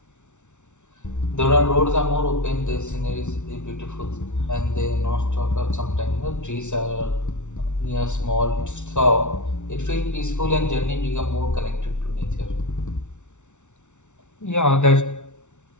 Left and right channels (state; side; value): late; right; 0.84 ms